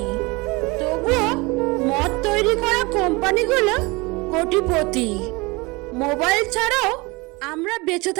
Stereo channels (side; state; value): left; quieter; 25.1 dB